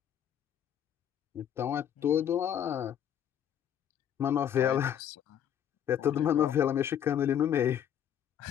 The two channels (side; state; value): right; quieter; 9.5 dB